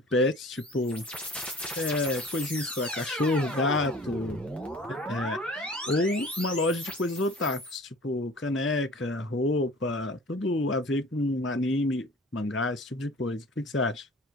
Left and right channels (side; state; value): both; normal; correlation 0.45